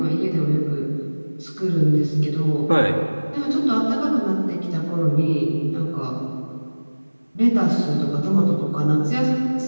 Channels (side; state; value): both; inverted; correlation -1.00